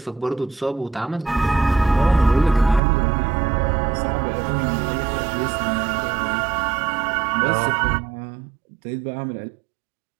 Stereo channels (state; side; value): drops out; left; at 2.8 s